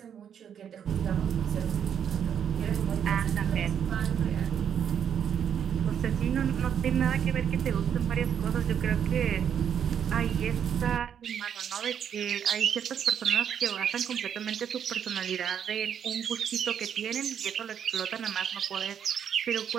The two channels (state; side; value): quieter; left; 8.4 dB